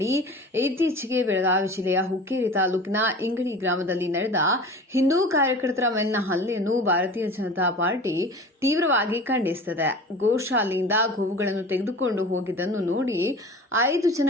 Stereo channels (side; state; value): both; normal; correlation 0.38